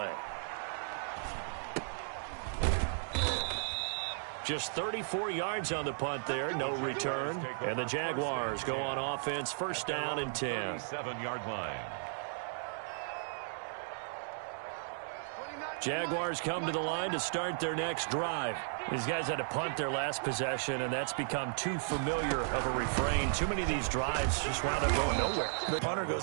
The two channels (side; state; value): left; silent; digital silence